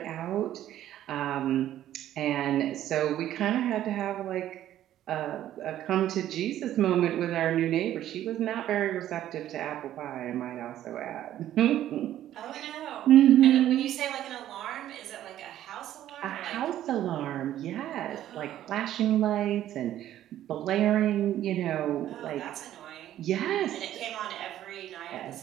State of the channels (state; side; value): quieter; left; 12.4 dB